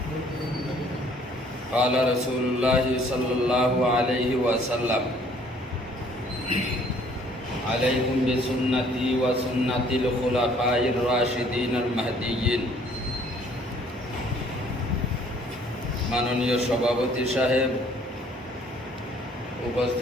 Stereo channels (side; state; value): both; normal; correlation 0.59